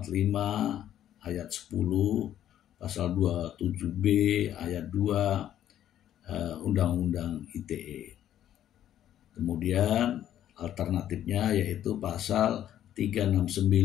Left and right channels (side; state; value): right; quieter; 11.3 dB